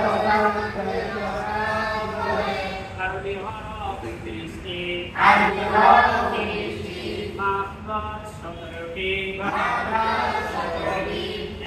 আরবি হরফ 30টি, মাখরাজ 17টি।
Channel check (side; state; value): both; identical; correlation 1.00